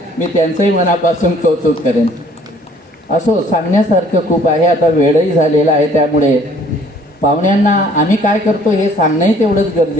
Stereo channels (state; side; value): normal; both; correlation 0.58